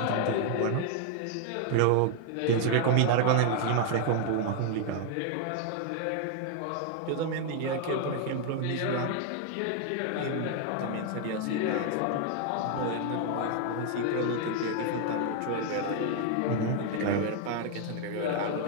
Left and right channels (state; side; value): different; both; correlation 0.00